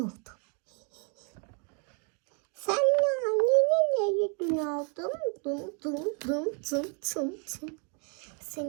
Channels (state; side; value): quieter; left; 37.8 dB